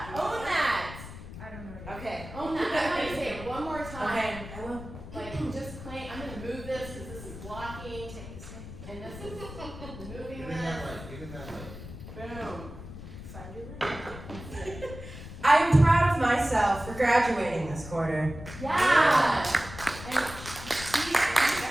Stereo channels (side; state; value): left; noise; rumble, 12 dB below the sound